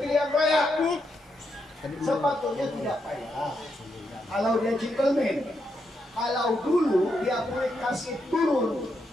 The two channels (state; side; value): normal; both; correlation 0.81